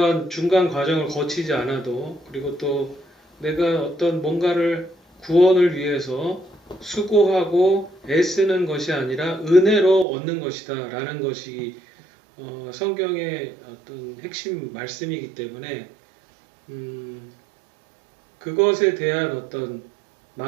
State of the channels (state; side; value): drops out; left; at 10.1 s